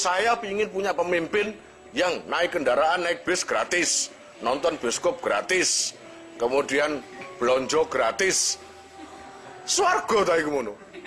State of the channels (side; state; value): both; identical; correlation 1.00